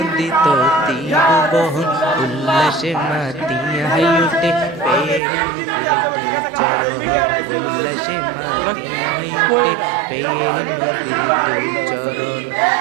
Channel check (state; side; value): drops out; left; at 5.2 s